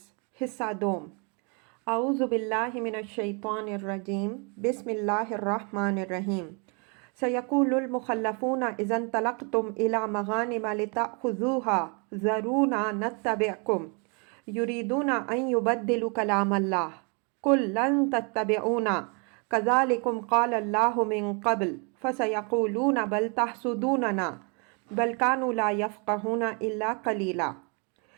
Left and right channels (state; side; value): quieter; left; 35.2 dB